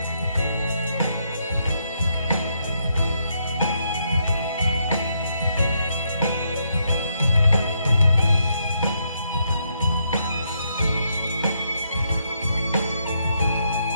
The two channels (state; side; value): inverted; both; correlation -0.77